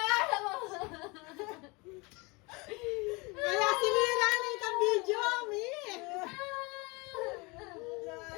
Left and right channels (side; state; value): right; quieter; 26.8 dB